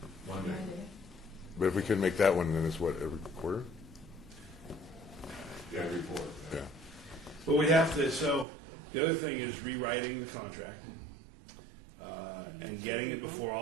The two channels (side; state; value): left; drops out; at 8.5 s